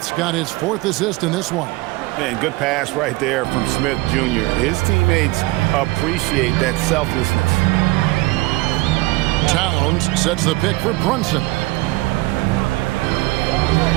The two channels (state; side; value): quieter; left; 21.3 dB